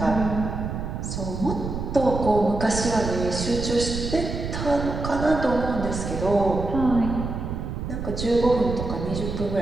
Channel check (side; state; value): right; noise; rumble, 5 dB below the sound